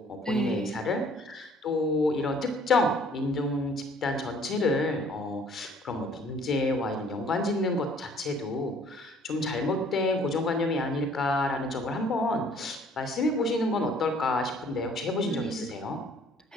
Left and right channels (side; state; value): both; normal; correlation 0.57